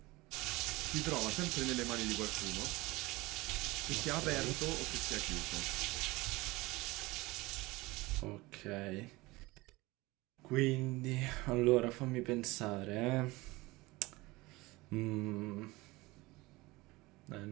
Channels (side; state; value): left; quieter; 21.5 dB